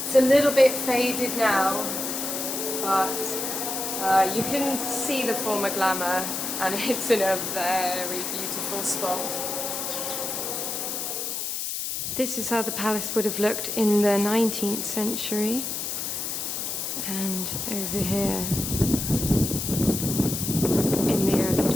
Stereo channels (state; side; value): noise; left; hiss, 3 dB below the sound